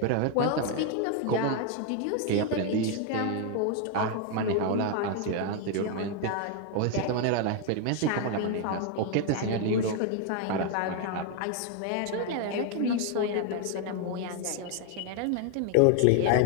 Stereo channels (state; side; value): different; both; correlation 0.01